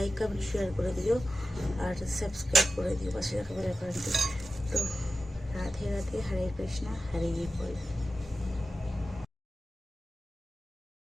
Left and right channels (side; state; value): both; normal; correlation 0.93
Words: কমেন্ট শেয়ার করে দিও, আর সাবস্ক্রাইব করে দিও, পাশে দেখা বেল আইকনটি। তো রাধে রাধে, হরে কৃষ্ণা, হরে বল।